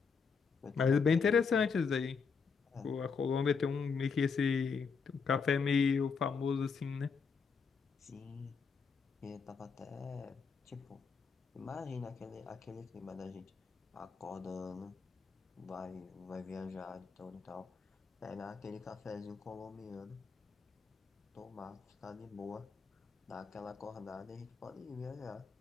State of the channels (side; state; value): right; quieter; 5.5 dB